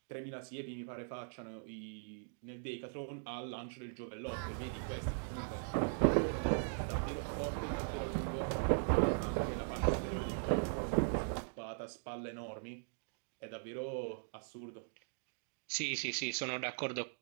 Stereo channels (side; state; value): left; silent; digital silence